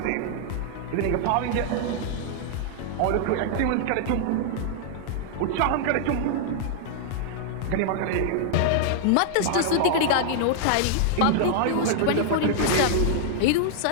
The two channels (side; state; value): both; different; correlation -0.01